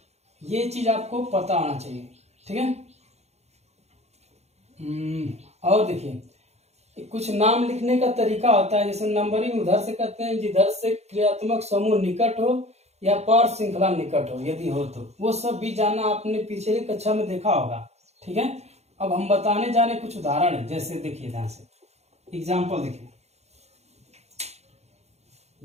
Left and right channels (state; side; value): late; left; 0.31 ms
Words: ये चीज आपको पता होना चाहिए। ठीक है, और देखिए कुछ नाम लिखने का तरीका होता है, जैसे नंबरिंग उधर से करते हैं जिधर से क्रियात्मक समूह निकट हो या पार श्रृंखला निकट हो, यदि हो तो वो सब भी जानना आपने पिछली कक्षा में देखा होगा। ठीक है, अब हम बताने जा रहे कुछ उदाहरण, जैसे देखिए ध्यान से एग्जाम्पल देखिए,